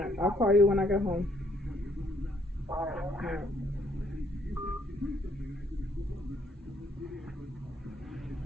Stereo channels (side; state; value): both; normal; correlation 0.68